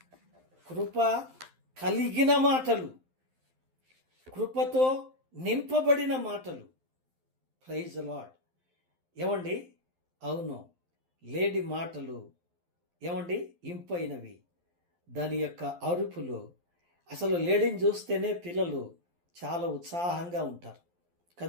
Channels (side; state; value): left; late; 12 ms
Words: కృప కలిగిన మాటలు, కృపతో నింపబడిన మాటలు. Praise Lord. ఏమండి? అవును, లేడి మాటలు ఏమండి ఇంపైనవి. దాని యొక్క అరుపులు, అసలు లేడీని చూస్తేనే పిల్లలు చాలా ఉత్సాహంగా ఉంటారు